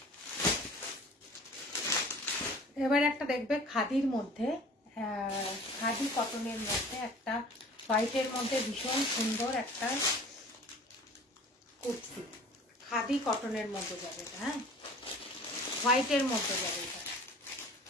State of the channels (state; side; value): normal; both; correlation 0.45